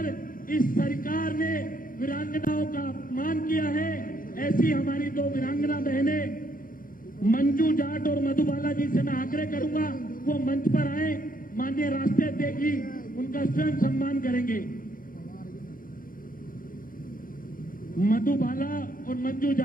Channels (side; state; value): right; late; 0.40 ms